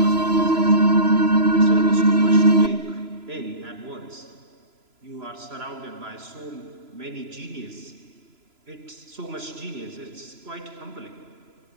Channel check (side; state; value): left; late; 3.0 ms